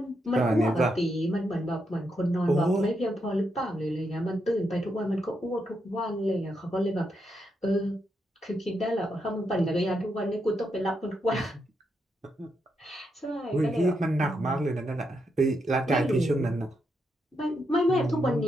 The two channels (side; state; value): both; normal; correlation 0.82